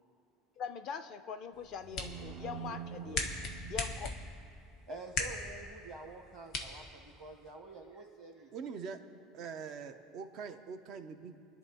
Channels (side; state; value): both; normal; correlation 0.35